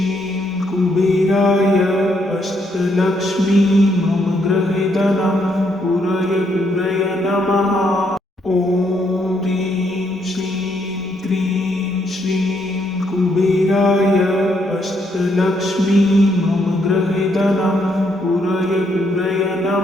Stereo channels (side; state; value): both; normal; correlation 0.74